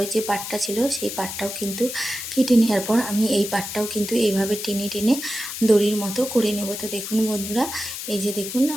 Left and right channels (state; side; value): noise; left; hiss, 7 dB below the sound